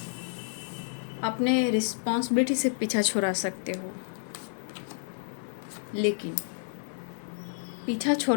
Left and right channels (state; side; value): silent; right; digital silence